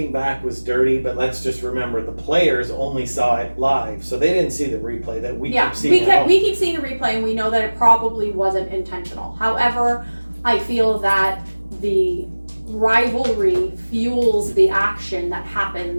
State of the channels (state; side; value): inverted; both; correlation -1.00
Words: back, was dirty, but let's just remember the players only saw it live, so they didn't see the replay that we keep seeing. We keep seeing the replay, and we know that it probably wasn't intentional. However, I feel that the rivalry fuels the action that